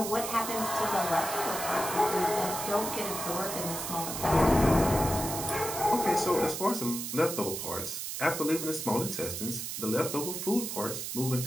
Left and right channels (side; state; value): right; noise; hiss, 5 dB below the sound